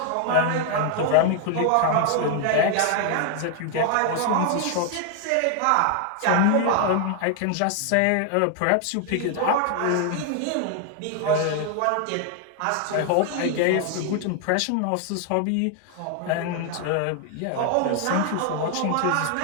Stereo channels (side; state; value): both; different; correlation 0.00